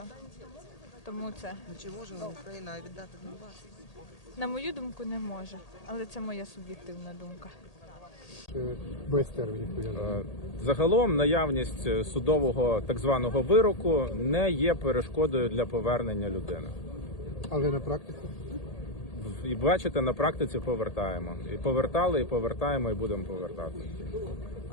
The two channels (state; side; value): late; right; 1.8 ms